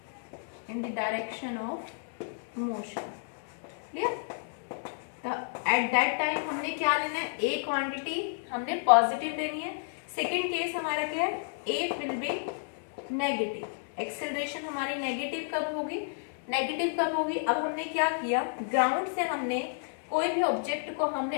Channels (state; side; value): silent; right; digital silence